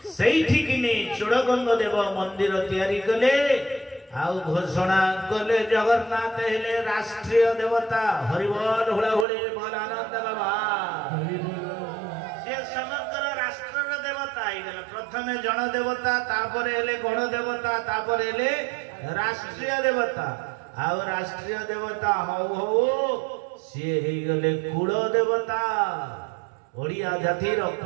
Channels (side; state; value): left; drops out; at 9.2 s